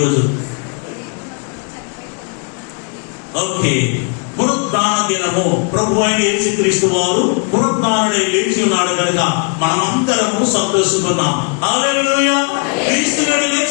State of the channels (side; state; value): right; quieter; 39.5 dB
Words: ఓకే, పునరుద్ధాన దినము. ప్రభు అయిన యేసుక్రీస్తు వారు పునరుద్ధానుడై లేచి ఉన్నాడు కనుక మనమందరము సంతోషిస్తున్నాం. హల్లెలూయా. క్రీస్తు నేడు